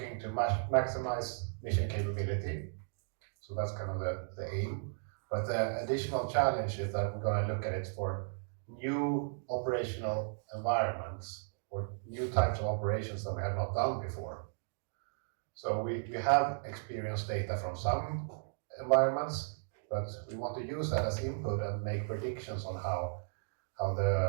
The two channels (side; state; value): left; silent; digital silence